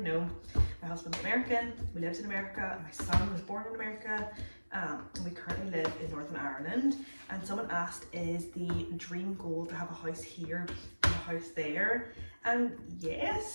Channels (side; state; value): both; inverted; correlation -1.00